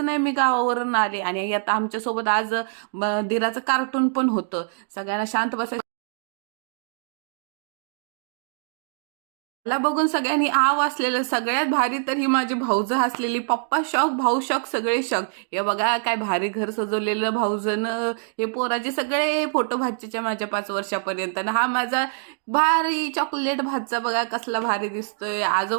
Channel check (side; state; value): left; silent; digital silence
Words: नाही मी गावावरून आले. आणि आता आमच्यासोबत आज दिराचं कार्टून पण होतं. सगळ्यांना शांत बसायचं. मला बघून सगळ्यांनी वाचलेलं. सगळ्यात भारी तर ही माझी भाऊजं हसलेली. पप्पा शॉक, भाऊ शॉक, सगळे शॉक. हे बघा काय भारी घर सजवलेलं भाऊजनं. हे पोराचे सगळे फोटो भाच्याच्या माझ्या 5 वर्षापर्यंत. आणि हा माझा भारी चॉकलेट भातचा बघा कसला भारी दिसतोय.